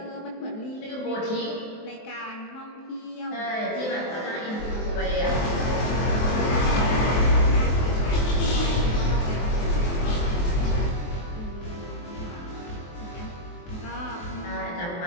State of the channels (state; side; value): late; right; 23 ms